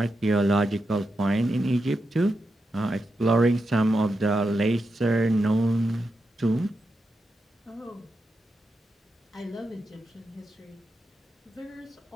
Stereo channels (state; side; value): normal; both; correlation 0.87